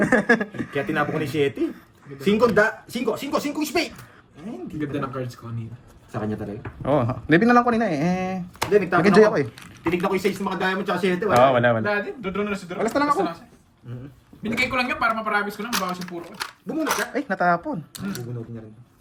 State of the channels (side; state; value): both; identical; correlation 1.00